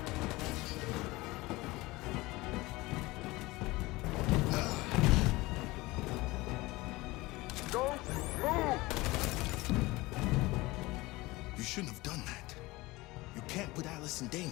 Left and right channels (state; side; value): quieter; right; 20.9 dB